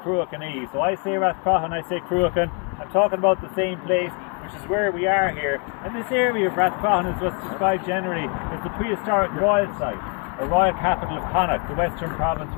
Cruachan. So I say Rathcroghan, I say Cruachan. I'm talking about the same place, which is where we are here. And this area of Rathcroghan is what's described generally as the prehistoric Royal Site, or Royal Capital of Connacht, the western province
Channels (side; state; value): right; quieter; 35.0 dB